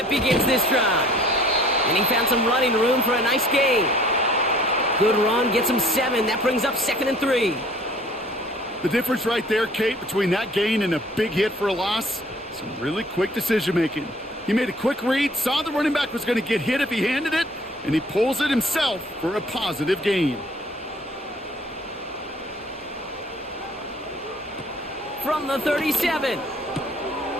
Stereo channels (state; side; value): normal; both; correlation 0.54